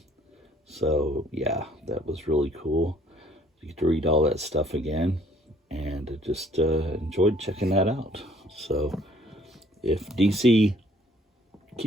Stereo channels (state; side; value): normal; both; correlation 0.60